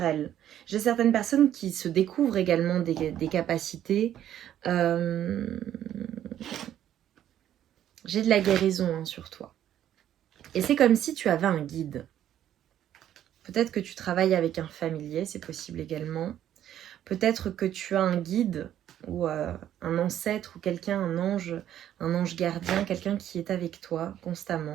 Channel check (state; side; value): quieter; left; 11.2 dB